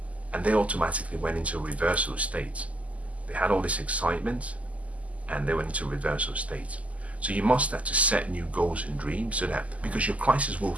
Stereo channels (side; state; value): left; late; 0.070 ms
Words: and they automatically went into a reversal state. They had all this excitement and they went into a reversal state. So you must have to set new goals and dreams, so that, because your crisis will